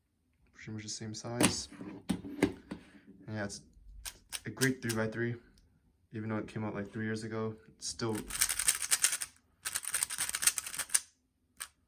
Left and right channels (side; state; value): both; identical; correlation 1.00